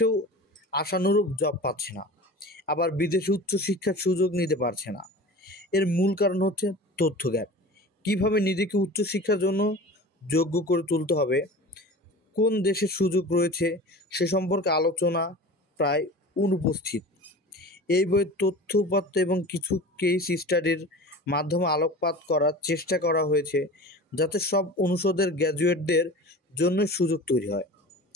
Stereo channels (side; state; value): both; normal; correlation 0.36